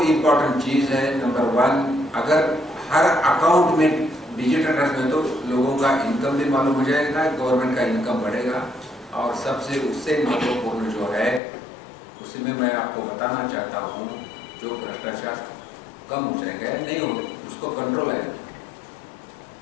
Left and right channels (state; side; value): drops out; right; at 11.4 s